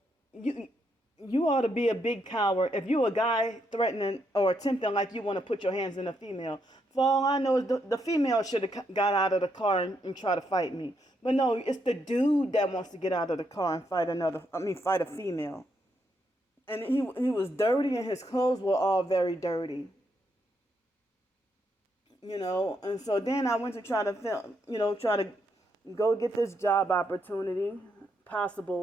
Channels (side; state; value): both; normal; correlation 0.78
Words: you ought to be a big coward if you a guy threatening or attempting like you want to put your hands in a female. For all I know, is the female should have got out of the car and try to fight me. But no, it's the dude that wants to get out of the car and fight a female. And he was dirty, and his clothes were all very dirty. And so then I went to try to film, try to go get this job opportunity,